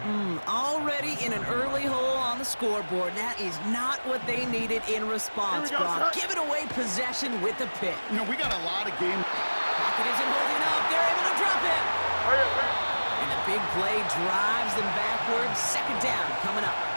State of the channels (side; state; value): both; inverted; correlation -1.00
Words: Already in an early hole on the scoreboard. That is not what they needed in response, Brock. Giving away possession with the pick. You know, we got a lot of game. Pocket isn't holding up. They're able to drop it. And the big play drives them backwards. 2nd down coming up.